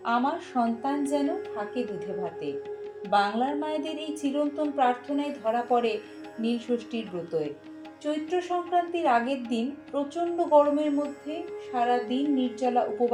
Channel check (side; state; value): both; identical; correlation 1.00